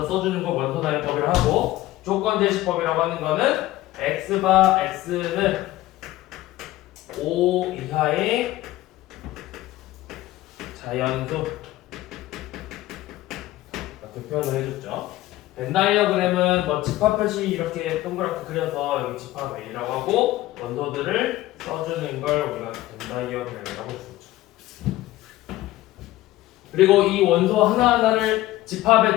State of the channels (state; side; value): quieter; right; 16.2 dB